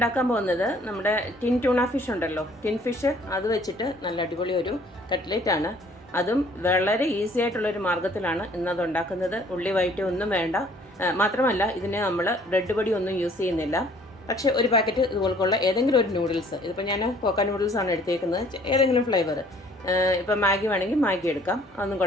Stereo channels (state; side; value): normal; both; correlation 0.57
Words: പോകുന്നത് നമ്മുടെ ടിൻ ട്യൂണ ഫിഷ് ഉണ്ടല്ലോ, ടിൻ ഫിഷ് അത് വെച്ചിട്ട് നല്ല അടിപൊളി ഒരു കട്ട്ലേറ്റ് ആണ്. അതും വളരെ ഈസി ആയിട്ടുള്ളൊരു മാർഗ്ഗത്തിലാണ് ഇന്നത് ഉണ്ടാക്കുന്നത്. ഉള്ളി വഴറ്റി ഒന്നും വേണ്ട. മാത്രമല്ല ഇതിന് നമ്മൾ ബ്രെഡ് പൊടി ഒന്നും യൂസ് ചെയ്യുന്നില്ല. പക്ഷേ ഒരു പാക്കറ്റ് ഇതുപോലുള്ള ഏതെങ്കിലും ഒരു നൂഡിൽസ്, ഇതിപ്പോൾ ഞാൻ കോക്ക നൂഡിൽസ് ആണ് എടുത്തേക്കുന്നത്, ഏതെങ്കിലും ഫ്ലേവർ. ഇപ്പോൾ മാഗി വേണമെങ്കിൽ മാഗി എടുക്കാം, അതൊന്നും